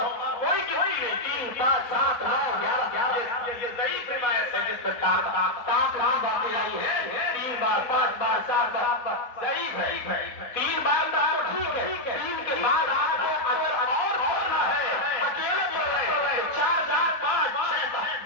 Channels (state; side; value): late; right; 4.1 ms